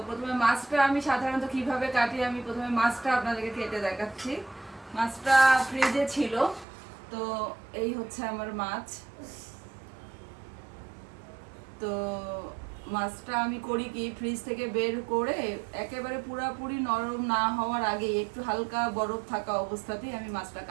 প্রথমে মাছটা আমি সাধারণত কিভাবে কাটি, আমি প্রথমে মাছটা আপনাদেরকে কেটে দেখাচ্ছি। মাছটা ফ্রিজে ছিল, তো এই হচ্ছে আমার মাছ। তো মাছটা আমি করি কি, ফ্রিজ থেকে বের করে একেবারে পুরাপুরি নরম না হওয়ার আগে একটু হালকা বরফ থাকা অবস্থাতেই আমি মাছটা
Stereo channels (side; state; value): left; drops out; at 6.7 s